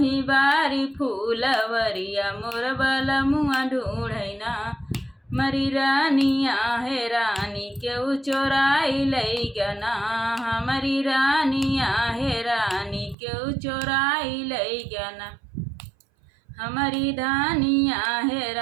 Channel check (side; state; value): left; drops out; at 13.2 s